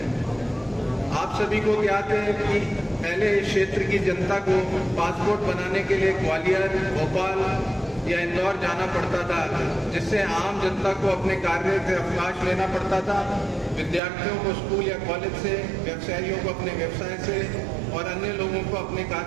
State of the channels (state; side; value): drops out; left; at 14.0 s